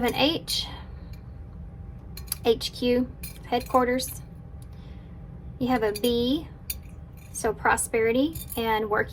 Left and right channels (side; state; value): both; identical; correlation 1.00